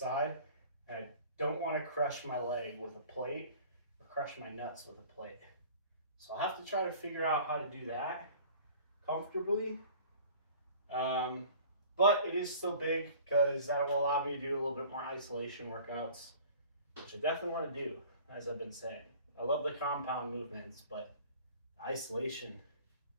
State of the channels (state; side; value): inverted; both; correlation -0.46